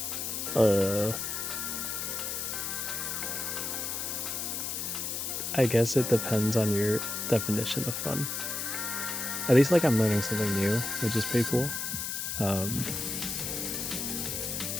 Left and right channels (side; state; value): left; noise; hiss, 3 dB below the sound